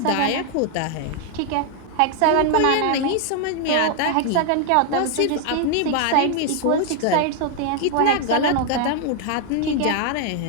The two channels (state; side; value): different; both; correlation 0.00